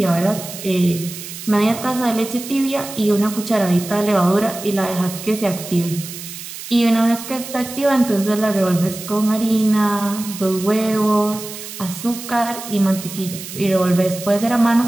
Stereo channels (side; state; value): right; noise; hiss, 11 dB below the sound